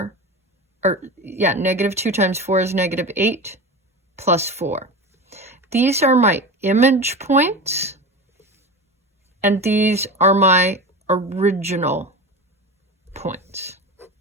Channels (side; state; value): both; normal; correlation 0.27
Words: -2 times 4 is -8 plus 4. These are my image points, and these are my original points.